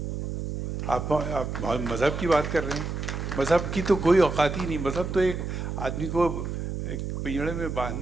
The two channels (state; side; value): noise; right; hum, 4 dB below the sound